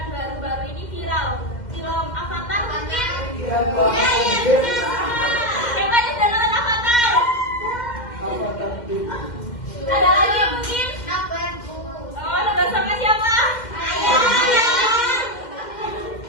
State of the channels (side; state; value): right; late; 2.1 ms